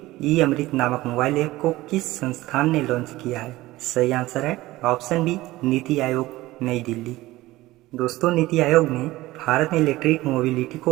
ई अमृत नामक मोबाइल ऐप को किस संस्थान ने लॉन्च किया है? सही आंसर है ऑप्शन बी, नीति आयोग, नई दिल्ली। दोस्तों, नीति आयोग ने भारत में इलेक्ट्रिक मोबिलिटी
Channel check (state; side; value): quieter; left; 18.0 dB